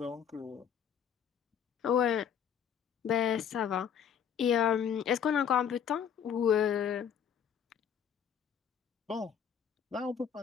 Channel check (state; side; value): quieter; right; 8.3 dB